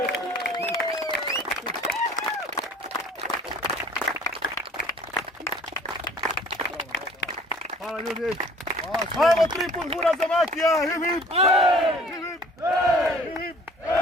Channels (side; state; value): both; normal; correlation 0.52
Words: Hvala ljudi. Ajmo, 3 put hura za Makija. Hip, hip. Hip, hip.